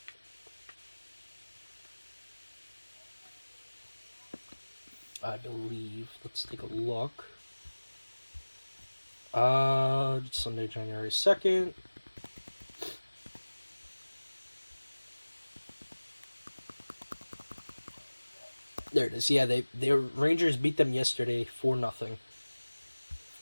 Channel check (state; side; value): inverted; both; correlation -1.00